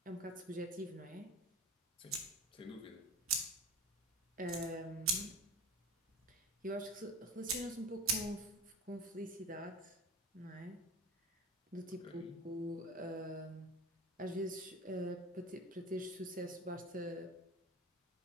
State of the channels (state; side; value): normal; both; correlation 0.33